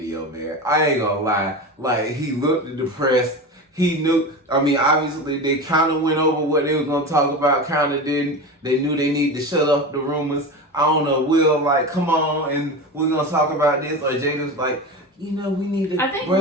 man. I ain't gonna lie. Like, he looked depressed. He knew, obviously they kind of went over what they was gonna talk about, kind of didn't. They knew they needed to shut up the rumors. I don't know, Will, come on and we're gonna talk about this. Or Jaden's like, we need to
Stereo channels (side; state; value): both; normal; correlation 0.26